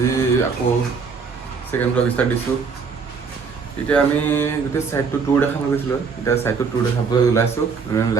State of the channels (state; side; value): quieter; left; 5.4 dB